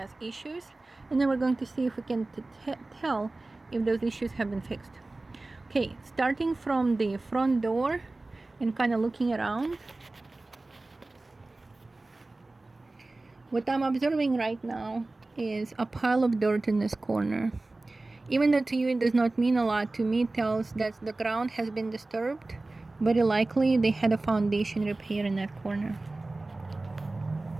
issues, and then we're going to see if we can tell if those issues have been fixed. Okay, starting from the front door and kind of looking around, what I'm observing right now is a pile of dirt in this corner. Even though to you it does not mean a lot, to me it tells that the ground has been disturbed. Very likely they had a foundation repair in that corner.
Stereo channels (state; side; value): quieter; left; 3.1 dB